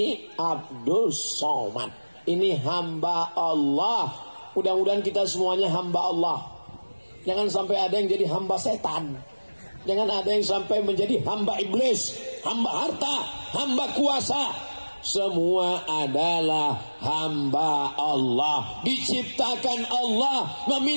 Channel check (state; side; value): inverted; both; correlation -1.00